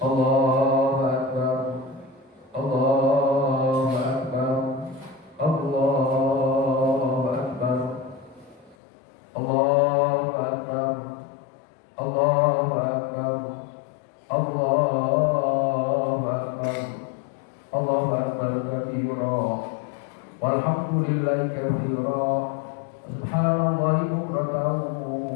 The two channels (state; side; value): drops out; right; at 8.8 s